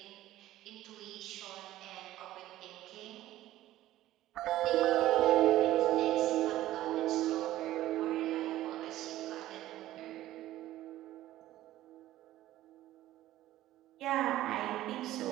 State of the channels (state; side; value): quieter; left; 14.6 dB